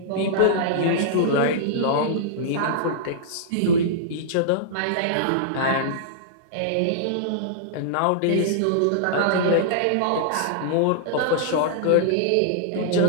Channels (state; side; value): different; both; correlation -0.02